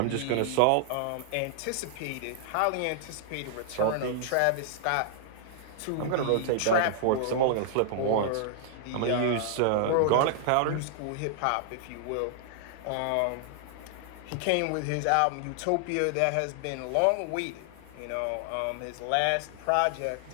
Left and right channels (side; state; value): both; different; correlation -0.01